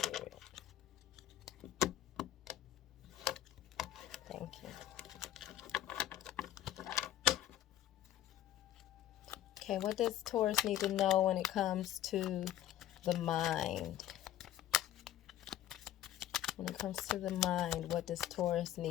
Thank you. Okay, what does Taurus need to know when it comes to the mind? When it comes to the mind, what does Taurus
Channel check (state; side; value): quieter; right; 12.4 dB